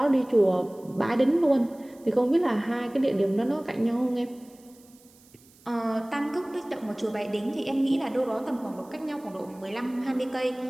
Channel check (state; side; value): noise; right; hiss, 28 dB below the sound